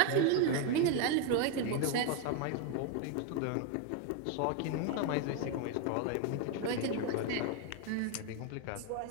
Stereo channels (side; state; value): both; different; correlation 0.01